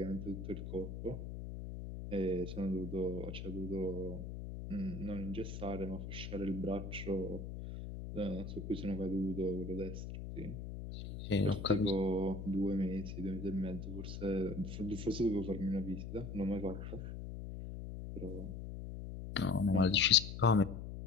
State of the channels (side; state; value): left; noise; hum, 7 dB below the sound